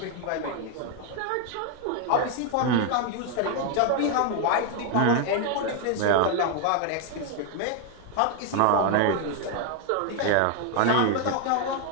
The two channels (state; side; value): different; both; correlation 0.00